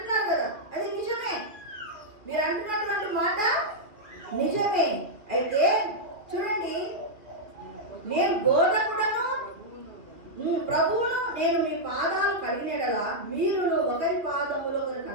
కదా, అది నిజమే. మీరు అంటున్నటువంటి మాట నిజమే. అయితే చూడండి, నేను బోధకుడను ప్రభువును నేను మీ పాదాలు కడిగినడలా మీరును ఒకరి పాదములు ఒకరు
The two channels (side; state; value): left; late; 2.7 ms